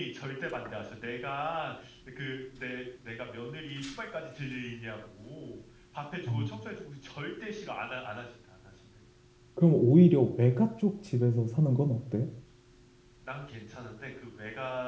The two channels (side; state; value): both; identical; correlation 1.00